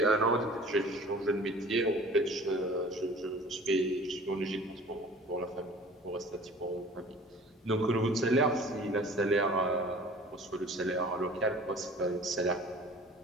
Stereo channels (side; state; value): both; normal; correlation 0.46